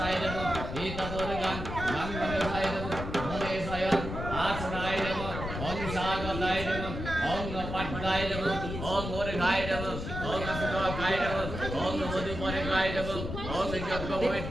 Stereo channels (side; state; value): left; noise; rumble, 6 dB below the sound